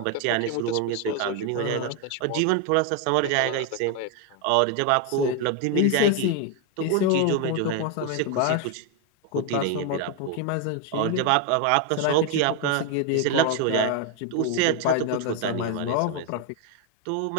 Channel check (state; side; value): different; both; correlation 0.01